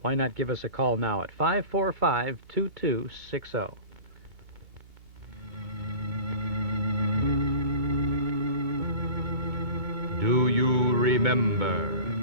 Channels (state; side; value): late; left; 2.8 ms